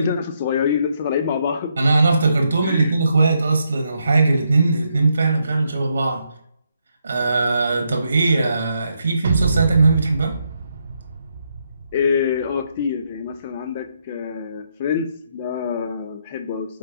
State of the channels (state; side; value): inverted; both; correlation -0.78